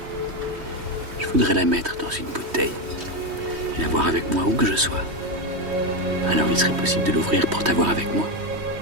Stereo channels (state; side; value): late; left; 3.1 ms